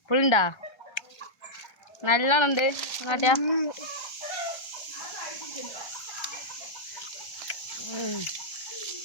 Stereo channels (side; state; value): right; late; 1.3 ms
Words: പുളിണ്ടാ നല്ലോണം ഉണ്ട് നോട്ടിയാ.